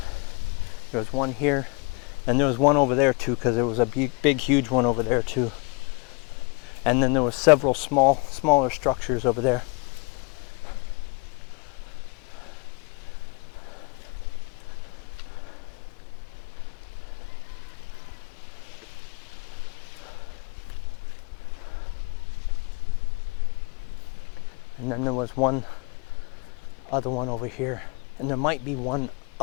There was one here. And there was one over there too, because there was a big, huge one over there too. And then there was several smaller structures over there. And then there was one other one over here. And there might be one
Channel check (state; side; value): quieter; right; 30.9 dB